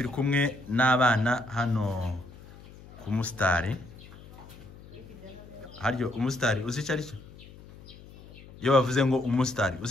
kumwe n'abana hano ku Mustari. Haryo Umustari uzi cyari cyo? Yo bavuze ngo Umustari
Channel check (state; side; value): noise; left; hum, 19 dB below the sound